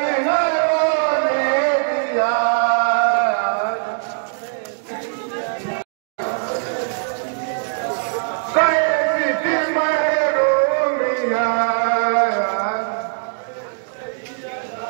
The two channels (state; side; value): silent; left; digital silence